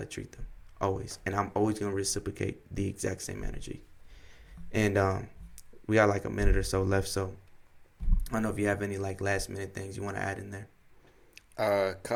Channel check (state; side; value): identical; both; correlation 1.00